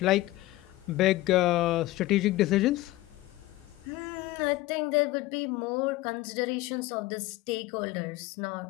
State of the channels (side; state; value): right; quieter; 17.7 dB